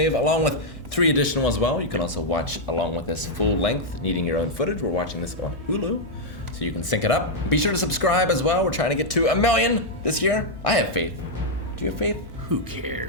along with 3 additional as well. You can also watch along with this full length, needing your own footage. We're watching this on Hulu, so you can sync it up. Be sure to subscribe as well. We're trying to get to 1 million this year. I have faith. Do you have faith? Who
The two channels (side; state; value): both; normal; correlation -0.03